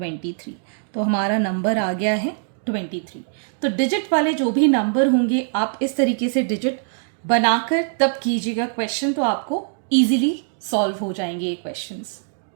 तो हमारा नंबर आ गया है 23। तो डिजिट वाले जो भी नंबर होंगे आप इस तरीके से डिजिट बनाकर तब कीजिएगा क्वेश्चन, तो आपको ईजिली सॉल्व हो जाएंगे ये questions.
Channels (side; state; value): left; silent; digital silence